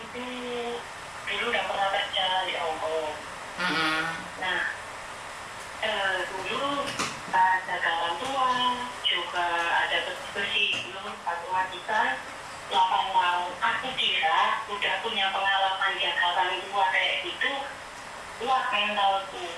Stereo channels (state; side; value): identical; both; correlation 1.00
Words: tuh dulu udah pernah kerja di Hongkong. Nah, dulu ada orang tua, juga ada bersih dulu matematika 8 tahun. Aku kira udah punya pengalaman jaga orang tua kayak gitu, kuat